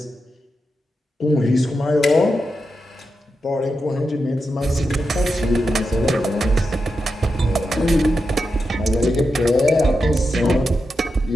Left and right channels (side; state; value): both; normal; correlation 0.88